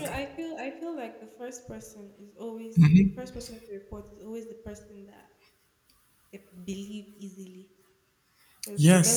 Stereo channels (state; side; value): identical; both; correlation 1.00